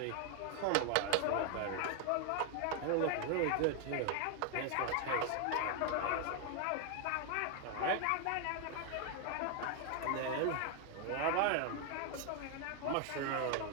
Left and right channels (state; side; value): different; both; correlation 0.00